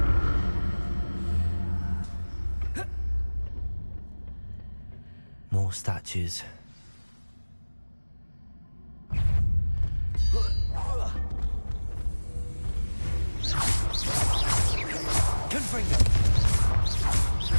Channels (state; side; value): inverted; both; correlation -1.00